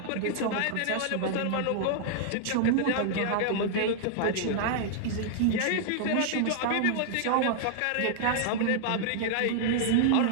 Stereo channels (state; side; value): different; both; correlation -0.01